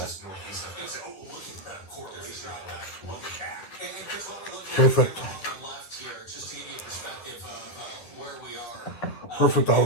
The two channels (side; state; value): right; late; 10 ms